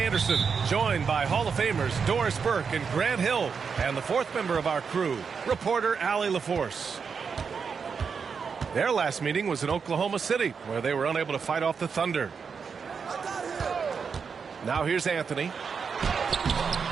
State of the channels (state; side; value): quieter; left; 5.9 dB